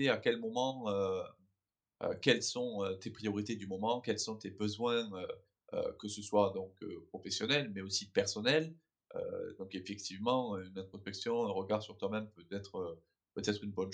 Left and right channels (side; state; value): both; identical; correlation 1.00